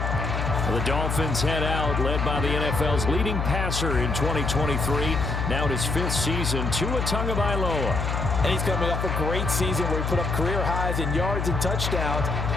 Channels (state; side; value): noise; left; hum, 1 dB below the sound